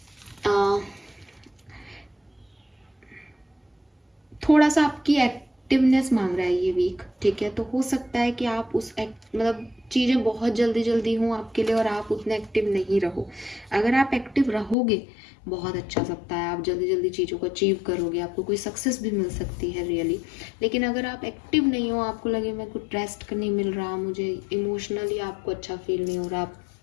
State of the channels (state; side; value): drops out; right; at 14.8 s